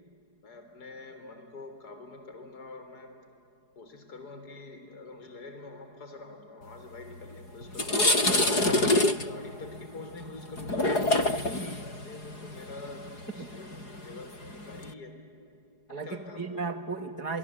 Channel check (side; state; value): right; late; 4.8 ms